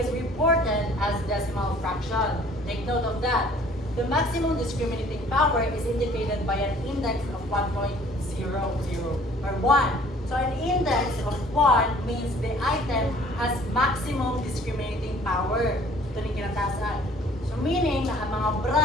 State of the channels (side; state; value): both; normal; correlation 0.54